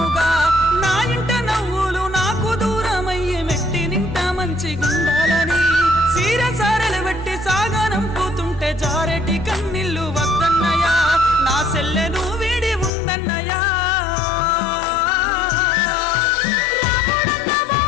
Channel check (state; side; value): drops out; right; at 12.9 s